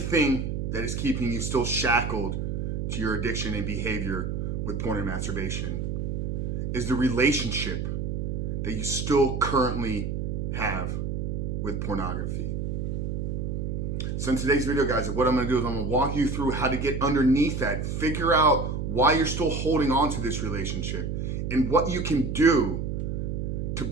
that is keeping you still shackled to your addiction and behavior with porn and masturbation is the relationship that you still currently have with pornography. So in today's video, guys, what I'm going to do is I'm going to walk you through how to get underneath that, figure out why you're still holding on to this relationship, and what you can do to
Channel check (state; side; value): noise; right; hum, 2 dB below the sound